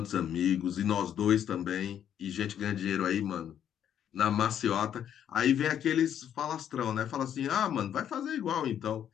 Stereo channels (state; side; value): quieter; right; 9.6 dB